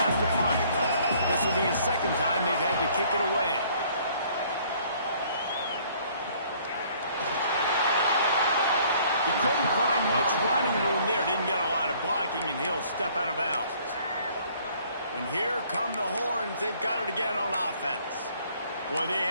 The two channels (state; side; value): inverted; both; correlation -0.59